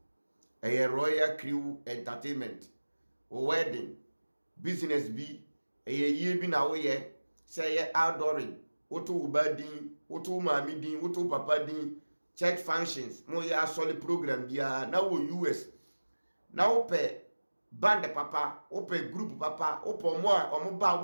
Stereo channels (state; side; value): inverted; both; correlation -1.00